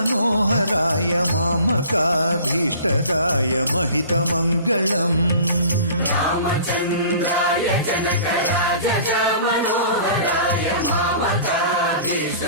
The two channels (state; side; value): inverted; both; correlation -0.45